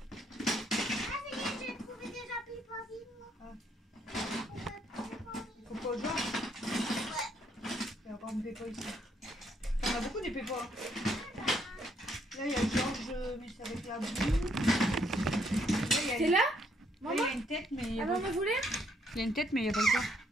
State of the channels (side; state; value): both; normal; correlation 0.71